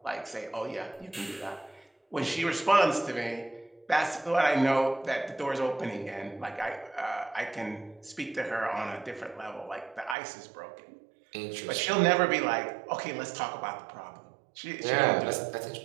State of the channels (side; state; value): left; drops out; at 10.2 s